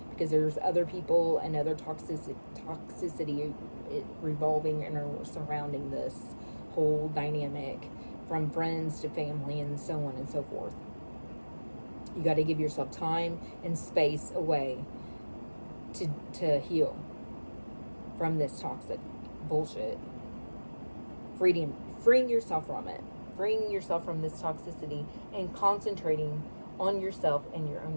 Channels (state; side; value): inverted; both; correlation -1.00